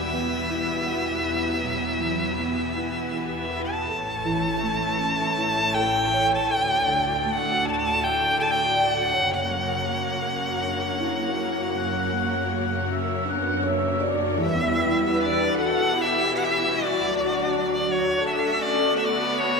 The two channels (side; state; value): both; normal; correlation 0.46